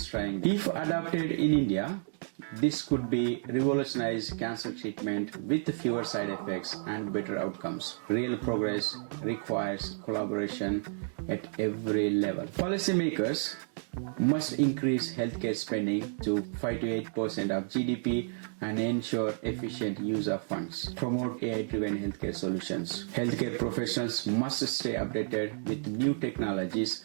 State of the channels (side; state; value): left; silent; digital silence